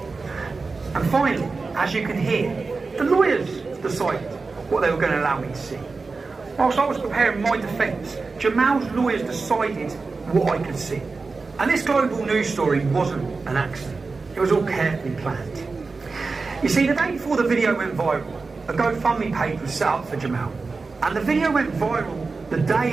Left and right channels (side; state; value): left; quieter; 4.1 dB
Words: And finally, as you can hear, the lawyers decided what they were going to allow me to see. Whilst I was preparing my defence, Jamal's lawyers decided what I could see. And this global news story wasn't an accident. It was all carefully planned. You see, the day before the video went viral, a GoFundMe page was set up for Jamal. And the video went viral the